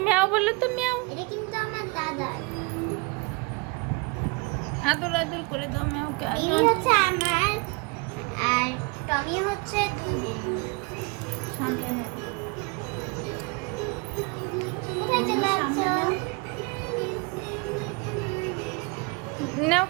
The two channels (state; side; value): quieter; left; 29.0 dB